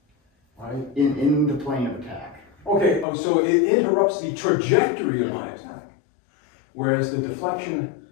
Right? In the plane of attack. Okay, so it interrupts the trajectory of my attack. Whereas the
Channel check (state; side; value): drops out; right; at 3.1 s